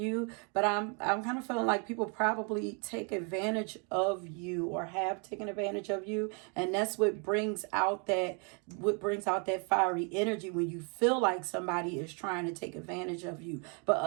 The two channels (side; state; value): left; quieter; 36.3 dB